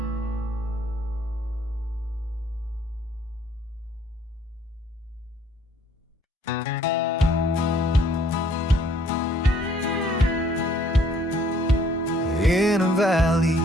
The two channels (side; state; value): both; normal; correlation 0.62